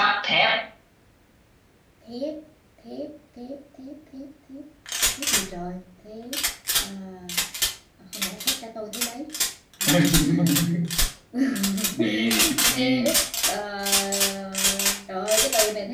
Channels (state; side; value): identical; both; correlation 1.00